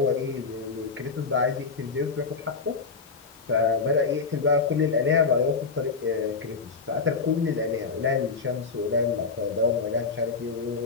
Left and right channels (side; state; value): right; quieter; 4.8 dB